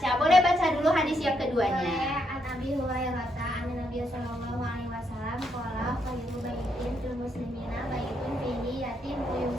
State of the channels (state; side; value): normal; both; correlation 0.77